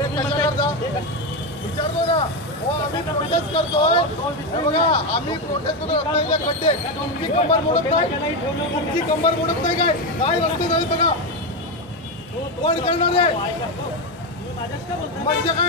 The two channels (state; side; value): normal; both; correlation 0.11